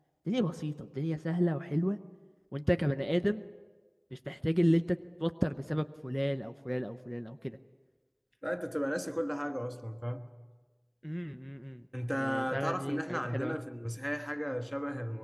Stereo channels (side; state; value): both; identical; correlation 1.00